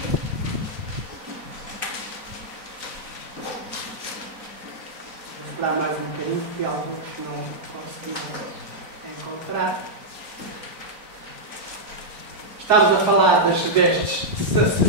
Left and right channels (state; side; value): late; left; 3.6 ms